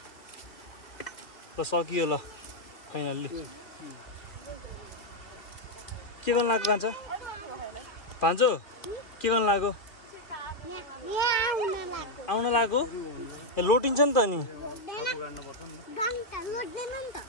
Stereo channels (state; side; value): late; right; 2.3 ms